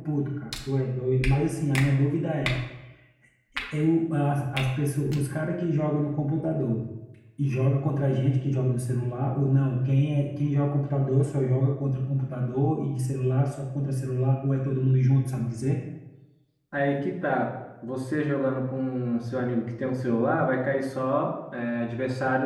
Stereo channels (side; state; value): both; identical; correlation 1.00